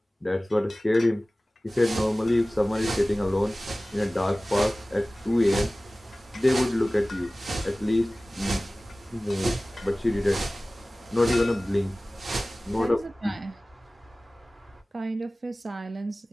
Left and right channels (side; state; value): both; normal; correlation 0.97